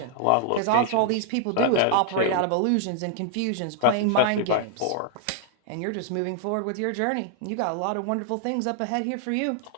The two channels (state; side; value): different; both; correlation 0.00